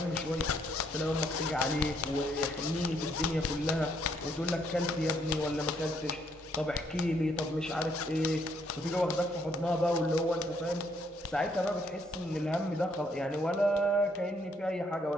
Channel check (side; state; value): both; normal; correlation 0.70